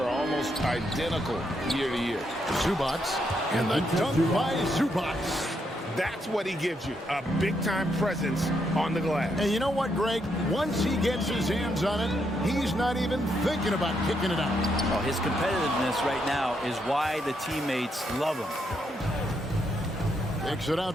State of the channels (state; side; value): normal; both; correlation 0.78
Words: almost identical year to year. Zubac. And the dunk by Zubac. That's what he gives you, a big-time presence on the glass. And you know what, Greg? Once he gets his hands on it, he's not even thinking about kicking it out. Oh, his competitiveness right now is why the teammates love him. Kicks it